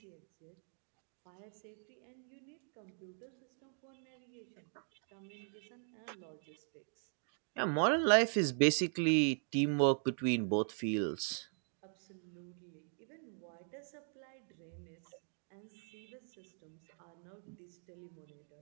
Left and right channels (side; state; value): left; silent; 51 dB below the other